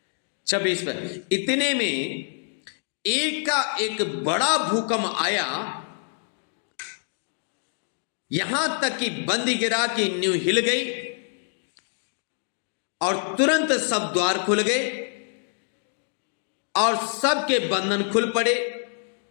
26 पर, इतने में एक का एक बड़ा भूकंप आया, यहां तक कि बंदीगृह की नींव हिल गई और तुरंत सब द्वार खुल गए और सबके बंधन खुल पड़े।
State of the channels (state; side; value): silent; right; 61 dB below the other